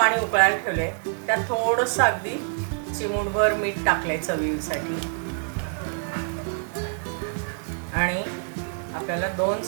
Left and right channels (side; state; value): left; silent; 61 dB below the other